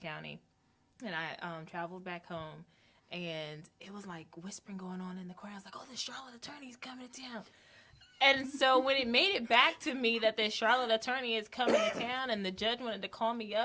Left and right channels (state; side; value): identical; both; correlation 1.00